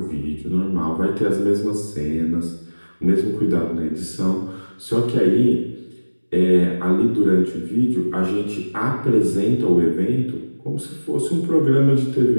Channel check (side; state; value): both; inverted; correlation -1.00